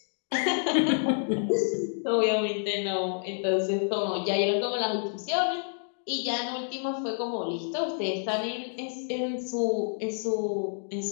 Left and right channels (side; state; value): right; silent; digital silence